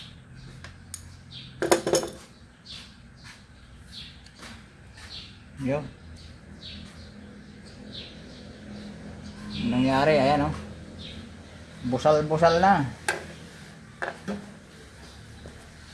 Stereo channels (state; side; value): identical; both; correlation 1.00